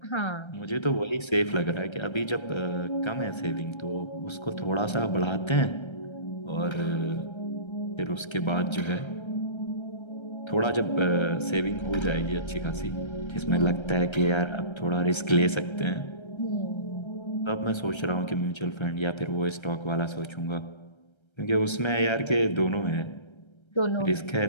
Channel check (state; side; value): late; right; 1.3 ms